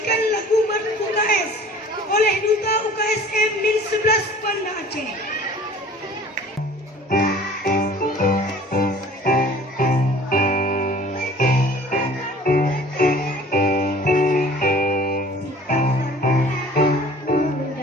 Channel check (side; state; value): both; normal; correlation 0.48